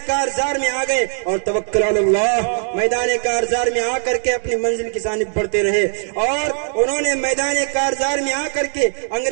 کارزار میں آ گئے اور توکل علی اللہ میدان کارزار میں آ کر کے اپنی منزل کی جانب بڑھتے رہے، اور انہوں نے میدان کارزار میں آ کر کے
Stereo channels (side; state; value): left; silent; digital silence